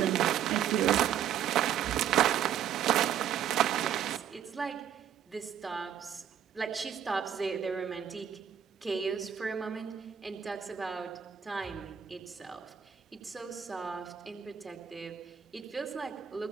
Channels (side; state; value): left; quieter; 9.3 dB